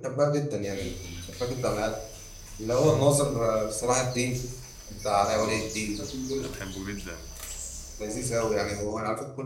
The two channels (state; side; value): identical; both; correlation 1.00